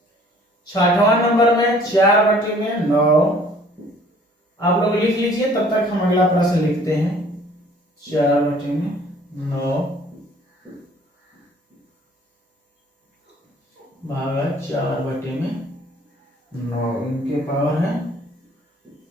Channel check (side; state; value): both; normal; correlation 0.55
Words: छठवां नंबर में 4/9 आप लोग लिख लीजिए, तब तक हम अगला प्रश्न लिखते हैं। 4/9 भागा 4/9, इनके पावर है